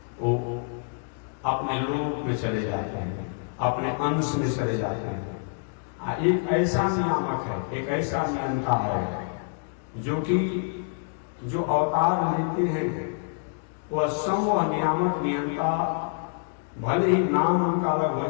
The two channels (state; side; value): silent; right; 60 dB below the other